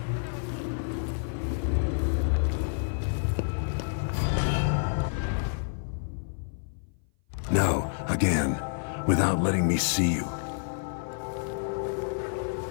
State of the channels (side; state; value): right; silent; 56 dB below the other